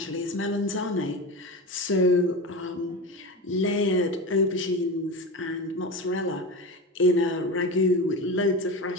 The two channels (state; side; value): normal; both; correlation 0.24